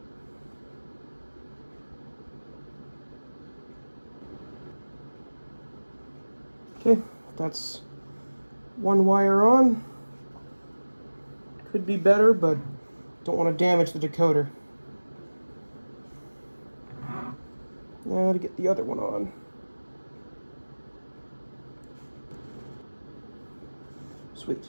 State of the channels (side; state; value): both; inverted; correlation -1.00